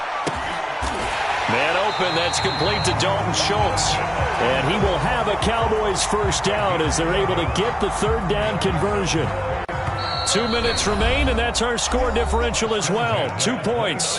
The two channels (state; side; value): identical; both; correlation 1.00